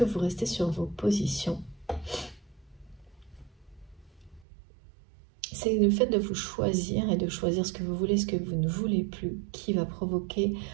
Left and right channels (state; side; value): drops out; left; at 4.5 s